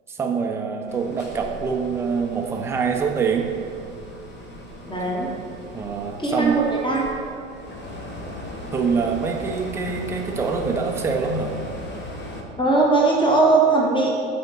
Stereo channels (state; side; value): quieter; left; 3.5 dB